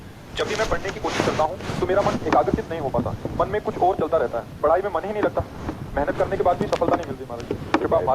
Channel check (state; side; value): identical; both; correlation 1.00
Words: जब भी मैं पढ़ने की कोशिश करता हूँ तो मेरा मन एकाग्रचित नहीं हो पाता, मन में कुछ और चलता रहता है, पढ़ाई में मन ही नहीं लगता, मेहनत करने के बाद भी सफलता नहीं मिलती। महाराज जी, कृपा